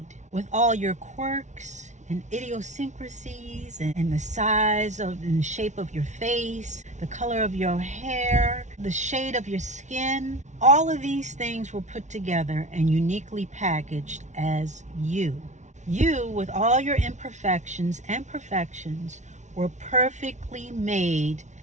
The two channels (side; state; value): left; late; 0.34 ms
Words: with all your quirks and idiosyncrasies and the size of and shape of your face, the color of your hair, the shade of your skin. All of these things were put together and uniquely packaged as you. You, with all your imperfections and perfections, were perfectly made